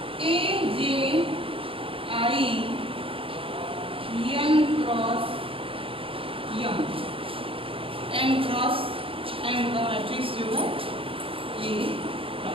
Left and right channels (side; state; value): left; late; 0.26 ms